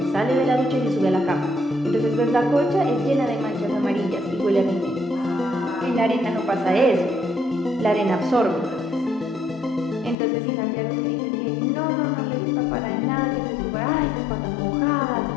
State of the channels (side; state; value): right; drops out; at 10.2 s